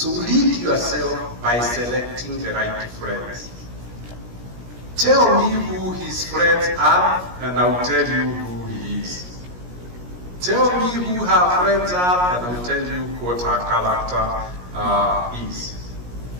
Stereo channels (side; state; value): left; late; 17 ms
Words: lead yourself by selecting the right friends. Tell me who his friends are, and I'll tell you who he is. Tell me who her friends are, and I'll tell you what her character is.